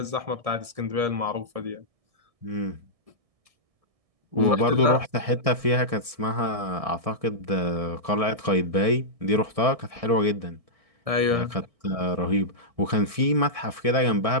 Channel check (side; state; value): left; late; 1.6 ms